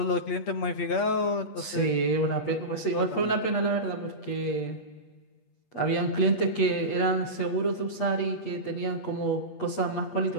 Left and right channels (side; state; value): right; late; 8.4 ms